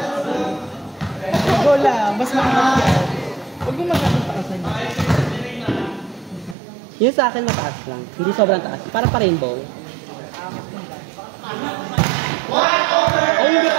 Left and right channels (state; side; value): drops out; left; at 6.6 s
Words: Go lang, mas makakapit yan. Huwag mo masyadong taasan niya. Yun sa akin mataas lang, hindi sobrang taas. Parang pa-rainbow. Ay, hindi